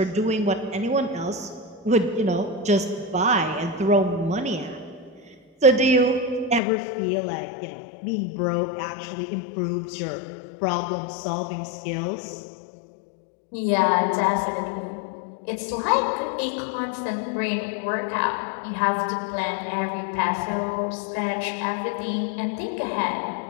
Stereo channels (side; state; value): right; drops out; at 6.6 s